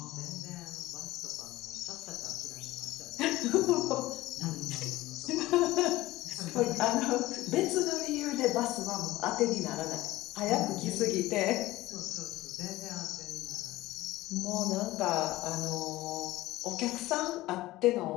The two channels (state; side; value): quieter; right; 17.6 dB